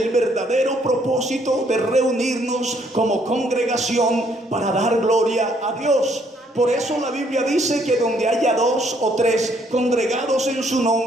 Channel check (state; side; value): normal; both; correlation 0.67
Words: verdadero propósito de reunirnos como congregación para dar gloria a Dios. Por eso la Biblia dice que donde haya 2 o 3 congregados en su